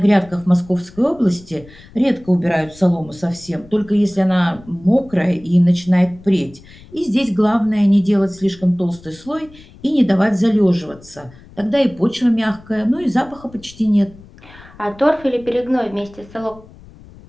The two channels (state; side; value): noise; left; rumble, 22 dB below the sound